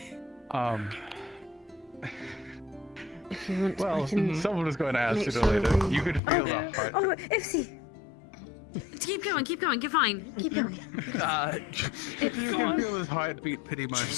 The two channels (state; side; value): drops out; right; at 6.2 s